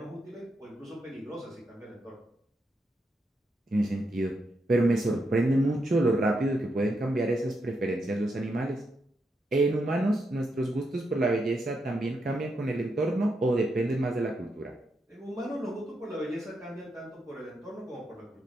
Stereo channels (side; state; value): both; normal; correlation 0.82